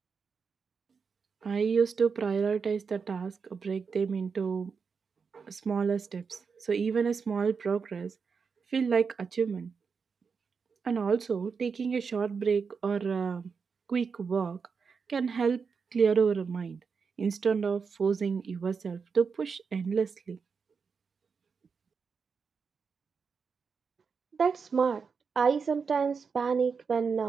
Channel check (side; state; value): left; quieter; 5.6 dB